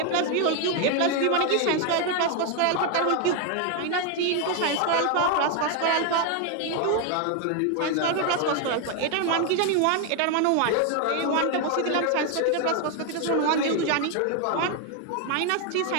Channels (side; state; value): both; different; correlation 0.01